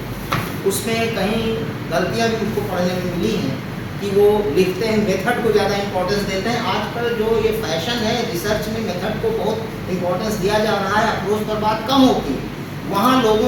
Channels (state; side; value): identical; both; correlation 1.00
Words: उसमें कहीं गलतियां भी मुझको पढ़ने में मिली हैं कि वो लिखते हैं मेथड को ज़्यादा इंपॉर्टेंस देते हैं। आजकल जो ये फैशन है, रिसर्च में मेथड को बहुत इंपॉर्टेंस दिया जा रहा है, अप्रोच पर बात कम होती है। वहाँ